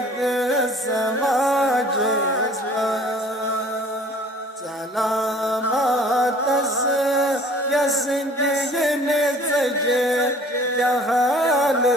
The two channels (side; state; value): both; normal; correlation 0.51